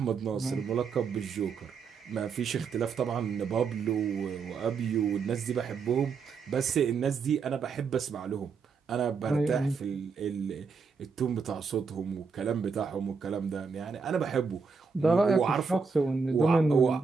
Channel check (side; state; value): left; quieter; 5.3 dB